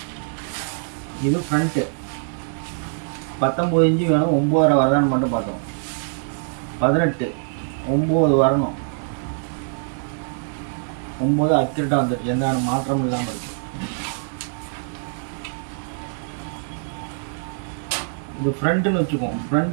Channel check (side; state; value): left; silent; 63 dB below the other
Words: இது ஃப்ரண்ட்டு 19 இன்ச்சு வேணும். 9.5 வரதான்னு மட்டும் பார்த்தோம். 18 9 வரணும். 9 அக்யூரேட்டாக வந்துடுச்சு, எந்த மாற்றமும் இல்லாமல் இருக்கு. இது ஃப்ரண்ட்டுன்னு வச்சுக்கோம்.